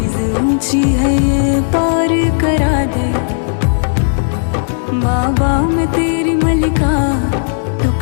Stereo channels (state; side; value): silent; right; digital silence